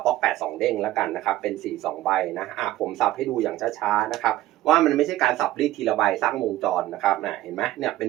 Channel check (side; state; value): left; quieter; 15.3 dB